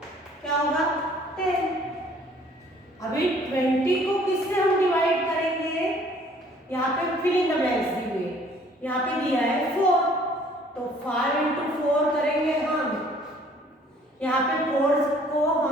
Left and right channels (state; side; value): normal; both; correlation 0.57